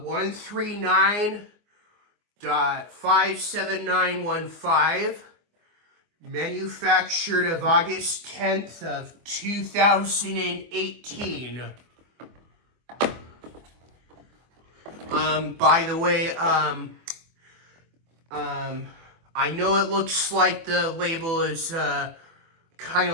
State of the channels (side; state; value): left; late; 24 ms